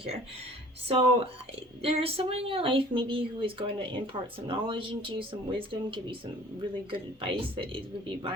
So there's someone in your life maybe who is going to impart some knowledge into you, some wisdom, give you some really good advice that it would be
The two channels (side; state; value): both; normal; correlation 0.49